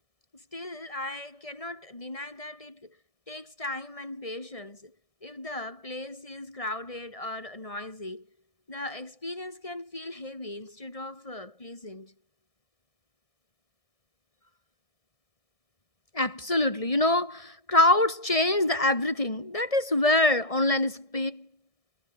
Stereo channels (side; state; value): right; late; 1.6 ms